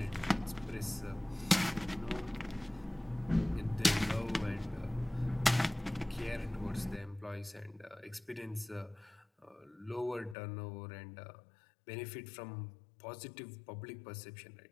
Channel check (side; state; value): right; drops out; at 10.4 s